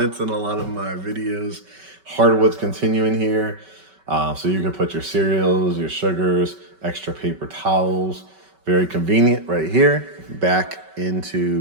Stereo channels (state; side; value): late; left; 5.2 ms